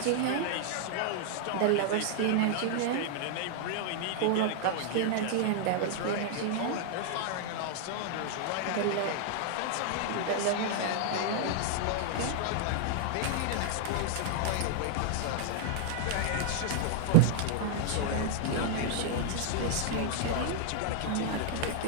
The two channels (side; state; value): both; different; correlation -0.01